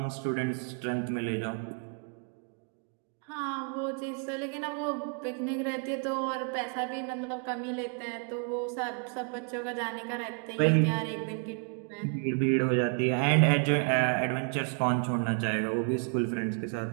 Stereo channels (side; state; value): left; quieter; 38.9 dB